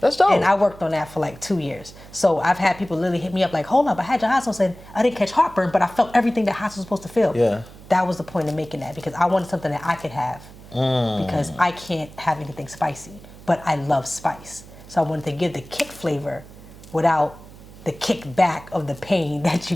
That's dope. And I worked on that for like 2 years. So I've had people literally hit me up like, hold up, I had your hot sauce and I didn't catch heartburn, but I felt everything that hot sauce was supposed to feel. Yeah. That was the point of making that, because I wanted something that I could have. Because I can't have anything spicy, but I love spice. So I wanted to give the kick flavor without the kickback of the pain that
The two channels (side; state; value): right; noise; hum, 19 dB below the sound